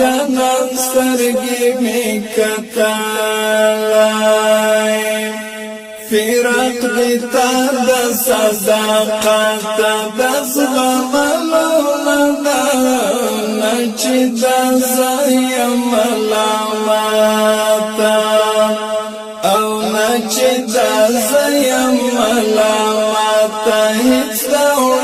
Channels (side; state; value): both; identical; correlation 1.00